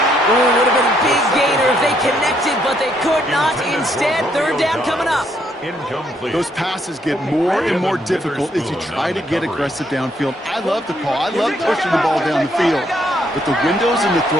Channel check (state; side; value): normal; both; correlation 0.72